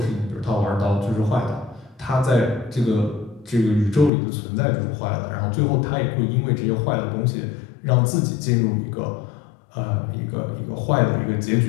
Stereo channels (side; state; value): right; drops out; at 4.1 s